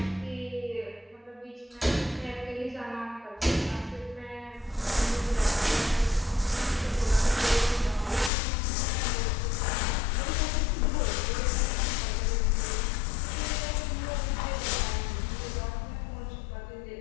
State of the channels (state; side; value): drops out; right; at 8.3 s